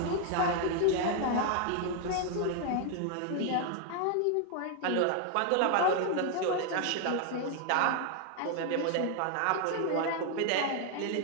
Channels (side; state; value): both; different; correlation 0.00